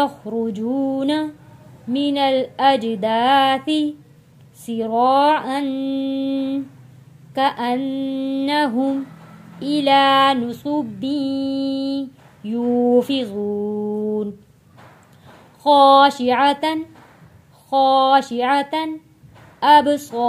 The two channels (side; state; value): both; identical; correlation 1.00